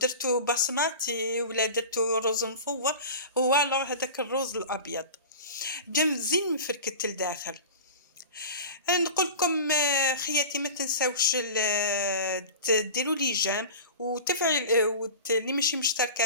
بصماتي ولا درتو رز مفور، هو الوغ هذاك الرز الابيض جا مزيان مفركت لداخل. نقول لكم خياتي ما تنساوش ديروا لي جيم وتفعل اللي ماشي مشتركه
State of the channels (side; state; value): both; inverted; correlation -0.34